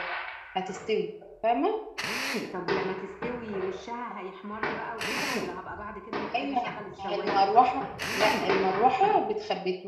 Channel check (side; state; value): both; identical; correlation 1.00